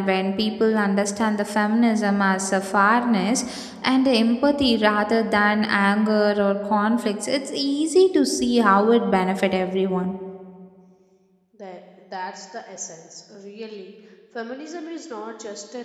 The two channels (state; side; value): identical; both; correlation 1.00